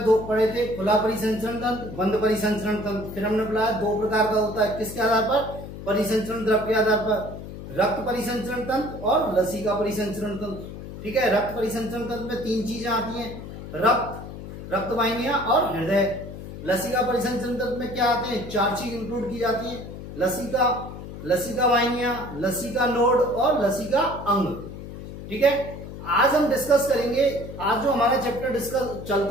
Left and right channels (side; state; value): left; noise; hum, 11 dB below the sound